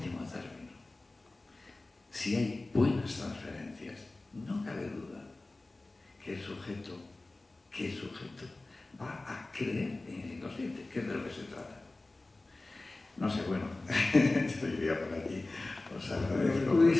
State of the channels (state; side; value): quieter; right; 3.0 dB